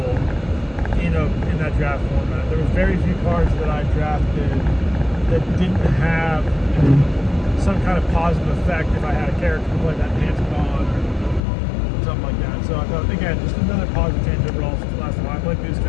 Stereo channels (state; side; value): drops out; right; at 11.4 s